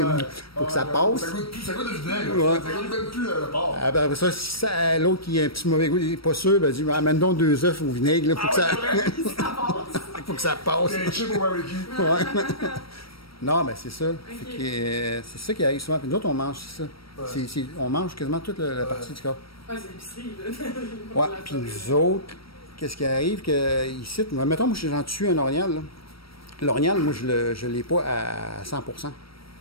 pour que ça passe. Ça goûte le vinaigre. Ça goûte plus le porc. Après ça, si l'autre qui a un petit mauvais goût, il n'est pas sûr, ben dit, amène donc 2 œufs au vinaigre, pour que ça... faut que ça passe. Il y a un chip au barbecue. Non, mais c'est ça. Okay. C'est ça qui arrive souvent. Puis nous autres, on mange ça. On mange quasiment toute la partie du corps. Ouais, c'est l'épicerie, là. Ouais, puis nous autres, qu'est-ce qui arrive que ici, mettons, moi, j'en tue un orignal, là. L'orignal, moi, je ne l'ai pas à 100%.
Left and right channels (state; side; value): late; right; 0.75 ms